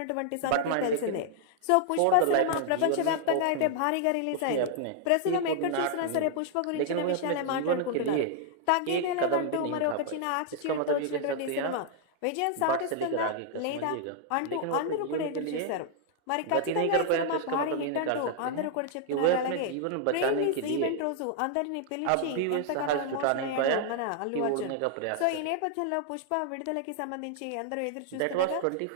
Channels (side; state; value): both; different; correlation -0.01